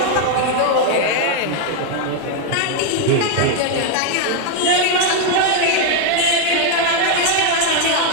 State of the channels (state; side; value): different; both; correlation 0.01